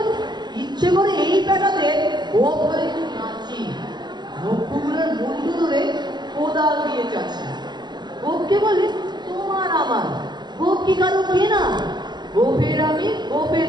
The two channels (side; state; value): left; late; 0.21 ms